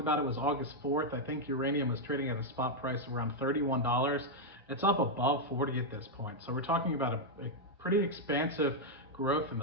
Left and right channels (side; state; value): both; normal; correlation -0.02